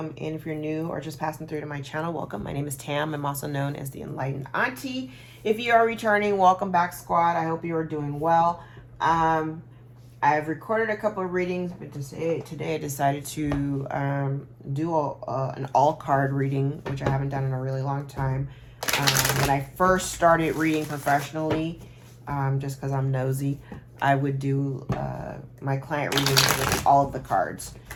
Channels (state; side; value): identical; both; correlation 1.00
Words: in. If you're new or just passing through to my channel, welcome. My name is Tam. I'm also known as the Enlightened Auntie. If you are returning, welcome back, squad. I hope you are doing well. I've recorded a couple of readings, but today I decided to do an all card reading, which I haven't done in a really long time. When I first started reading professionally, just because I'm nosy, I would do my client readings with all of the cards.